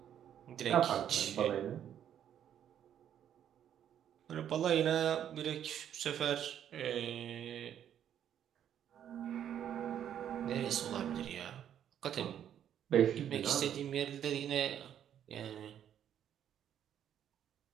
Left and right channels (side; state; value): left; quieter; 9.8 dB